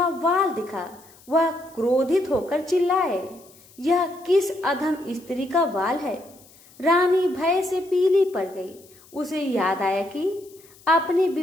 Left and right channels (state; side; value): noise; left; hiss, 26 dB below the sound